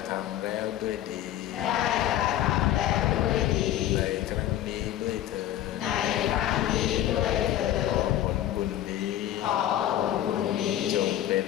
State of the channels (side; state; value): right; quieter; 12.4 dB